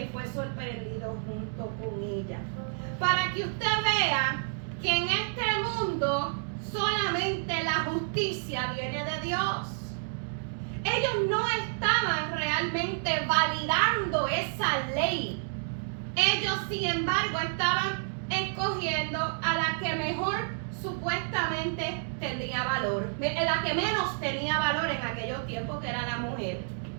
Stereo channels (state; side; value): silent; left; digital silence